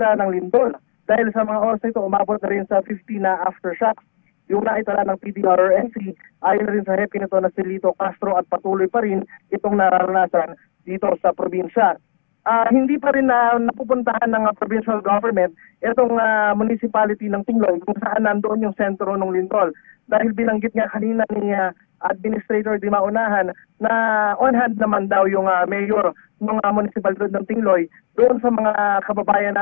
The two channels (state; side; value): silent; right; digital silence